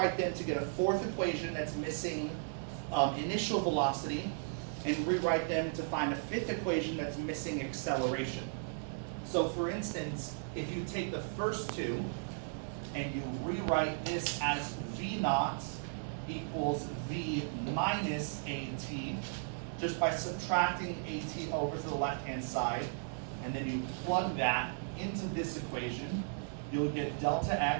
them to get a 4th equation that's missing initial velocity, and rewrite them to find a 5th equation that's missing acceleration. So for instance, if you take the first 2 and you rewrite this as V naught equals V minus AT, just by subtracting AT over to the left-hand side, and then you plug that into this equation, you'll get delta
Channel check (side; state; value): left; silent; digital silence